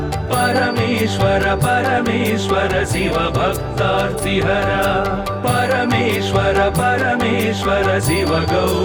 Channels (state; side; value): identical; both; correlation 1.00